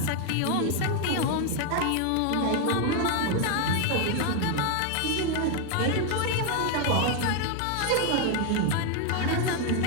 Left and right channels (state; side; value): different; both; correlation 0.01